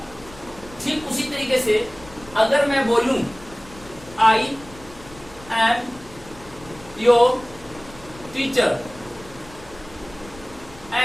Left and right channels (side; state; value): left; noise; rumble, 20 dB below the sound